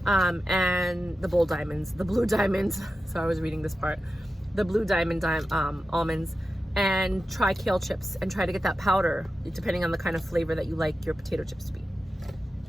And the Bold Diamonds, the Blue Diamonds. So I was reading this part. The Blue Diamond almonds. And try kale chips and try to get that powder, depending on the kind of flavor that you like your potato chips to be.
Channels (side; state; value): both; normal; correlation 0.92